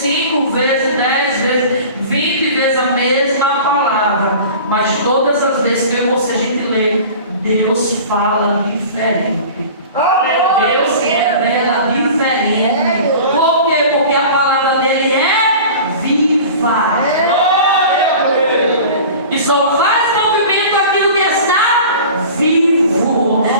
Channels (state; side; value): inverted; both; correlation -0.39